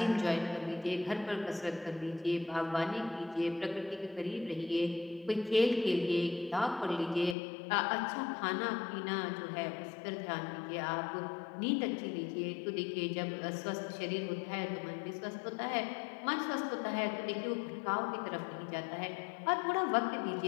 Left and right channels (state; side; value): drops out; right; at 7.4 s